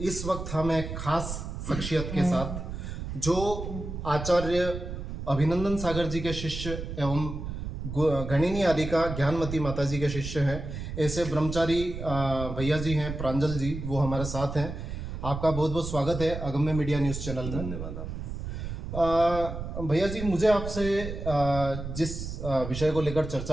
वक्त हम एक खास शख्सियत के साथ जो आचार्य अभिनंदन सागर जी के शिष्य एवं गणिनी आदिका ज्ञानमती माता जी के शिष्य हैं, ऐसे ब्रह्मचारी भैया जी हैं, प्रांजल जी, वो हमारे साथ हैं। आपका बहुत बहुत स्वागत है अगम्य मीडिया न्यूज़ चैनल में। धन्यवाद आपका। भैया जी, मुझे आपसे जिस विषय को लेकर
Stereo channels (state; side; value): noise; right; rumble, 7 dB below the sound